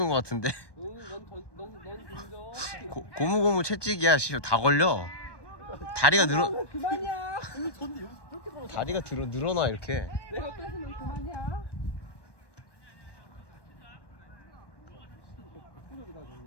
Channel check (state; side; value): late; right; 1.2 ms